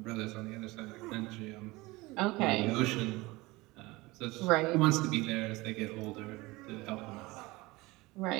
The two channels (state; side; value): quieter; left; 21.6 dB